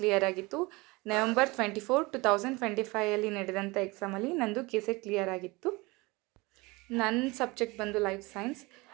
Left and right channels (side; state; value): left; quieter; 24.1 dB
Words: ಕ್ಲಿಯರ್ ಆಗಿತ್ತು. November 24, 2025 ನಡೆದಂಥ ಎಕ್ಸಾಮಲ್ಲಿ ನಂದು ಕೇಸೆಟ್ ಕ್ಲಿಯರ್ ಆಗಿತ್ತು. ನನ್ನ ಸಬ್ಜೆಕ್ಟ್ ಬಂದು ಲೈಫ್ ಸೈನ್ಸ್.